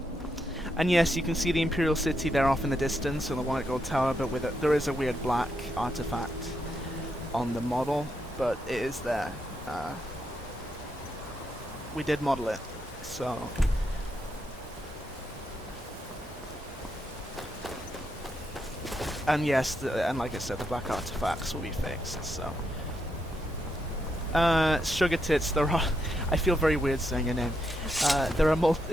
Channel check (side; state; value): both; normal; correlation 0.81